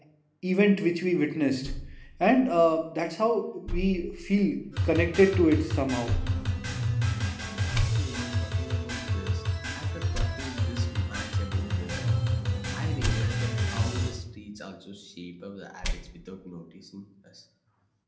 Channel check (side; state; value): both; identical; correlation 1.00